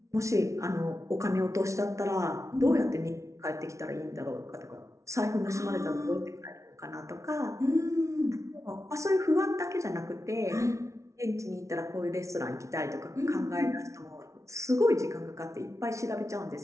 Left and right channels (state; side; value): late; left; 0.14 ms